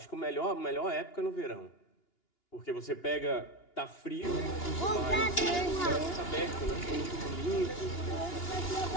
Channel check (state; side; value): late; right; 2.9 ms